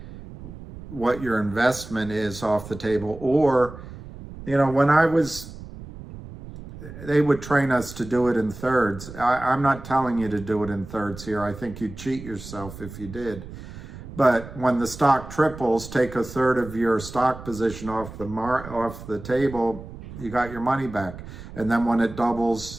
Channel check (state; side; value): noise; right; rumble, 14 dB below the sound